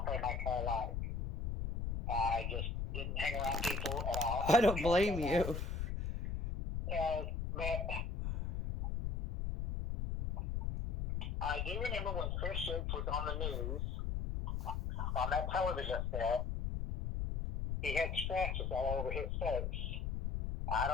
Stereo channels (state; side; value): noise; left; rumble, 2 dB below the sound